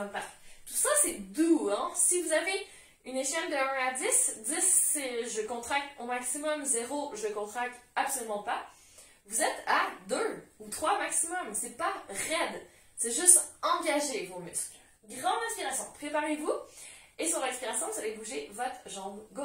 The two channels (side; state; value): both; identical; correlation 1.00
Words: Tout ça, c'est doux, hein? Si vous avez une échelle de 1 à 10, 10 c'est je contracte au maximum, 0 je contracte absolument pas. Vous êtes à 2 ou 3 maximum, c'est pas raide, c'est juste engager vos muscles. Grande inspiration, préparez-vous et sur l'expiration, vous allez bouger votre jambe